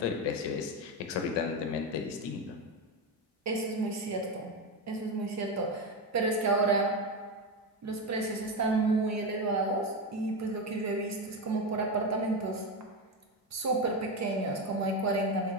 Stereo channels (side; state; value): both; normal; correlation 0.14